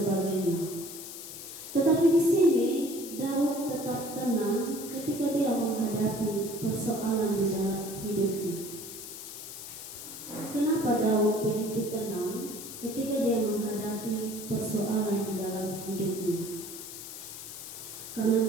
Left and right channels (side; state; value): left; noise; hiss, 11 dB below the sound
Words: menghadapi persoalan di dalam hidupnya. Kenapa Daud begitu tenang ketika dia menghadapi persoalan di dalam hidupnya? Karena